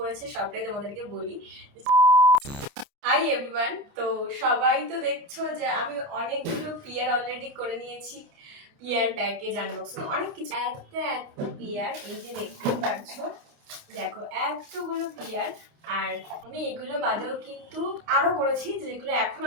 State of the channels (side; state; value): left; late; 29 ms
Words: সবটাই তোমাদেরকে বলি। হাই এভরিওয়ান, তো সবাই তো দেখছো যে আমি অনেকগুলো পিয়ার অলরেডি করে নিয়েছি। পিয়ার প্যাকেজ আনবক্সিং অনেক কিছু। এত পিয়ার, এই যে দেখতে পাচ্ছো, দেখো এতগুলো পিয়ার। আর আমি এগুলো বাদেও কিন্তু আরো করেছি, যেগুলো এখন